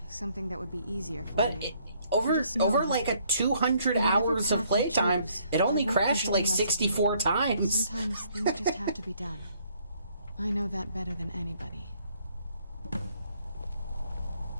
Something that would be easier for But you. it, over Just know that like a 200 whatever hours of path you playtime, choose, it only I won't crashed think like any less of you. 64 times. Sometimes things just have to be done. I know that better than anybody. I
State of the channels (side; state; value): both; inverted; correlation -0.66